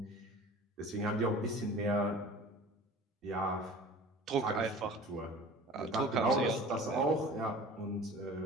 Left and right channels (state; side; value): normal; both; correlation 0.42